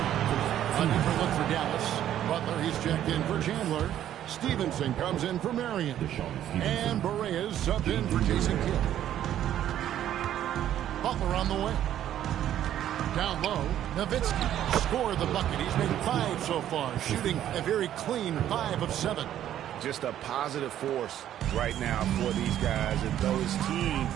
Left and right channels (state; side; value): quieter; left; 11.4 dB